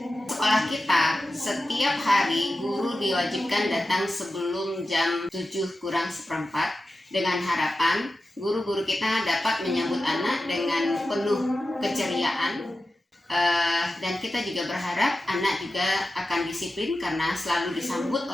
Sekolah kita setiap hari guru diwajibkan datang sebelum jam 7:kurang 1/4 dengan harapan guru-guru kita dapat menyambut anak dengan penuh keceriaan, dan kita juga berharap anak juga akan disiplin karena selalu disambut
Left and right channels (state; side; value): normal; both; correlation 0.93